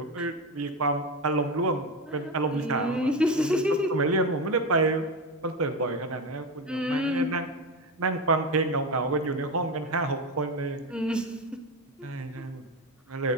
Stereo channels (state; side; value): normal; both; correlation 0.17